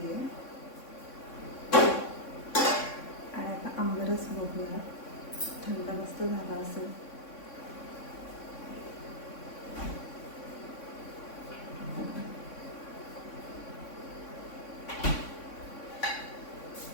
आहे. आणि आता आंबरस बघूया, थंड मस्त झाला असेल.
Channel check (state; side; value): late; right; 3.6 ms